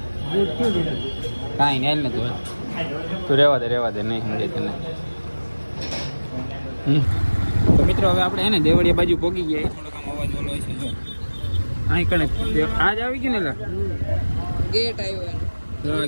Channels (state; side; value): inverted; both; correlation -1.00